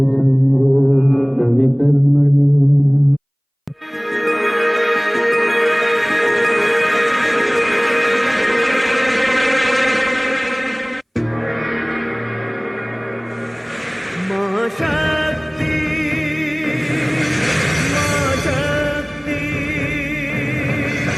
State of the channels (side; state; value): both; identical; correlation 1.00